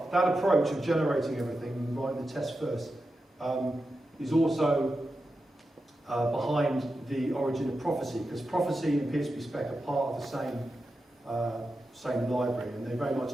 that approach of generating everything and writing the test first is also behind the origin of Prophecy, because Prophecy and PHP spec are part of the same library, and they very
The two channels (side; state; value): both; normal; correlation 0.90